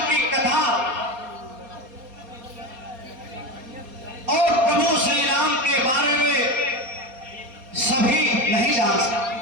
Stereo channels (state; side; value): late; left; 4.2 ms